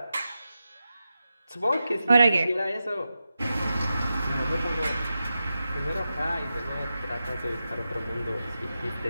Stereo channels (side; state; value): both; inverted; correlation -0.91